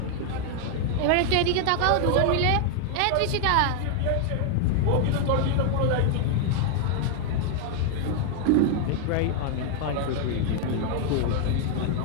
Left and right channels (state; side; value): different; both; correlation 0.00